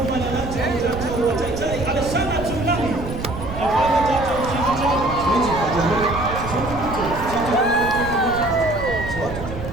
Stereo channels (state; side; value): noise; right; rumble, 9 dB below the sound